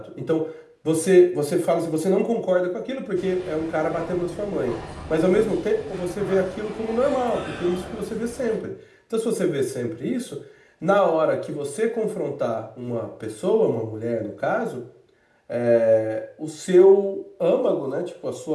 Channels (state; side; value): identical; both; correlation 1.00